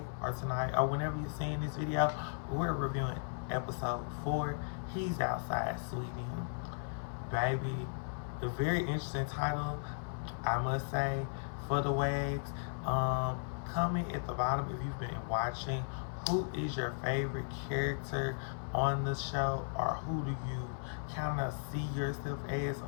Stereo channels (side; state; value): right; silent; 54 dB below the other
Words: or tonight, or whenever you're seeing this video, we're reviewing episode 4. He's outside, sweetie. Baby, a very interesting title, I must say, for the Wags. Comment at the bottom if you've been watching. Who is your favorite character on the show, or who do you kind of see yourself as